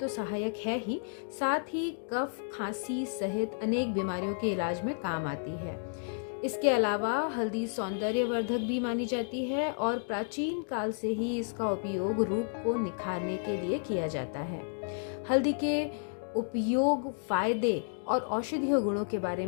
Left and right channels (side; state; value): right; silent; digital silence